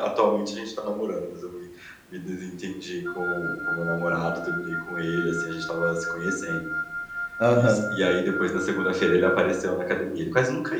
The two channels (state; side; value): identical; both; correlation 1.00